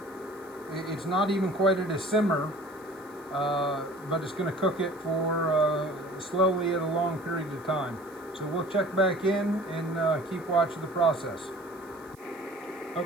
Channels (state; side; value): noise; right; hiss, 27 dB below the sound